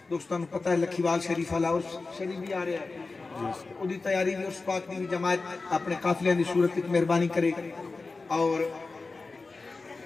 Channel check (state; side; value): quieter; right; 3.8 dB